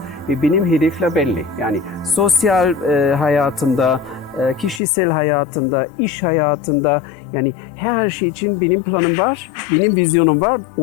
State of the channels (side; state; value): right; drops out; at 4.8 s